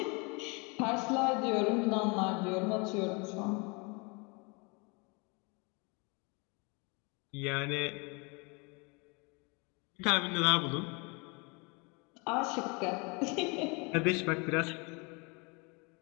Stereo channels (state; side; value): quieter; right; 30.2 dB